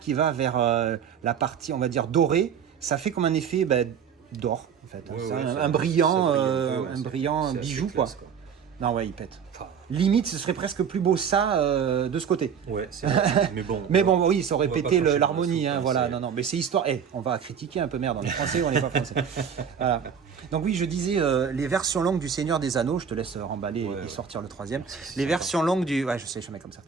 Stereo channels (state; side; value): quieter; left; 7.3 dB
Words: va vers la partie, on va dire, dorée, ça fait comme un effet d'or, en fait. Ouais, C'est ouais, un ça brillant, brille un peu, ouais, un c'est- brillant c'est assez bijou, classe, quoi. Non, ouais, il pète. Enfin, Limite, ce serait presque plus beau ça de ce côté. ouais, c'est vrai. Mais bon. Mais bon, oui, ça aurait on va pété pas cracher l'harmonie, dans la hein, soupe, voilà. c'est- Non, non, mais c'est histoire. On va critiquer un peu, merde, on est français ou on n'est pas français. Voilà. Donc oui, je disais les versions longues du Seigneur des Anneaux. Je te laisse remballer Ouais, et ouais. sortir le troisième. C'est Les sympa. versions longues du, ouais, je sais, je mets comme